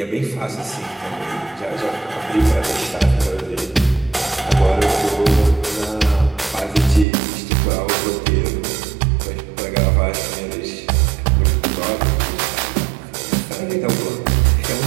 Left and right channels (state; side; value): drops out; left; at 7.1 s